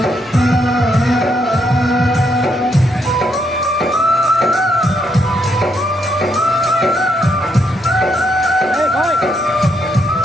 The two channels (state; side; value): normal; both; correlation 0.76